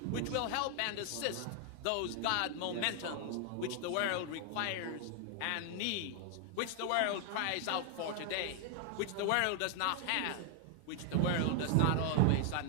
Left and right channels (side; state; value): both; different; correlation 0.00